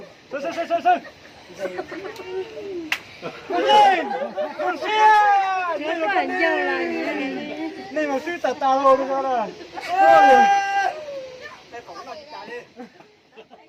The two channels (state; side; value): identical; both; correlation 1.00